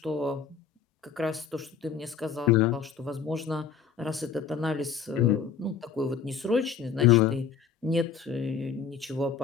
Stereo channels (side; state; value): right; quieter; 6.7 dB